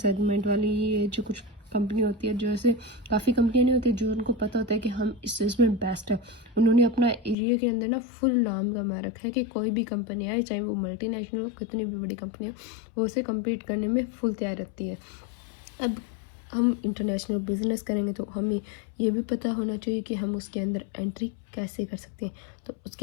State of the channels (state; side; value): drops out; right; at 7.4 s